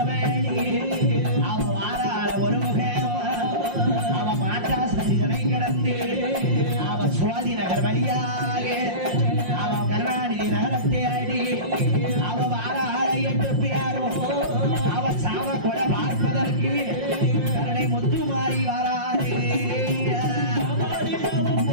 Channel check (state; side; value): late; left; 5.6 ms